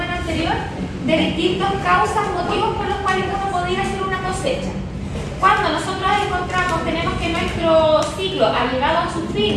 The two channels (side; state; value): both; identical; correlation 1.00